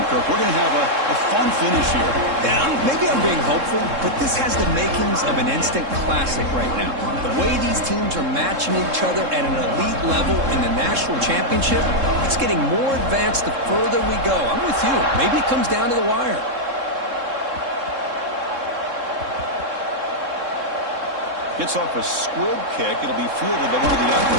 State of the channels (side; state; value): left; late; 3.7 ms